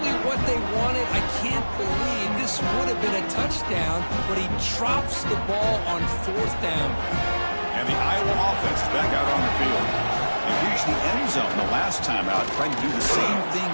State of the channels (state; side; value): inverted; both; correlation -1.00